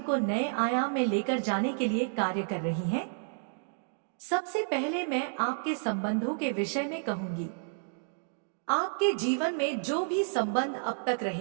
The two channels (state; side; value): silent; left; digital silence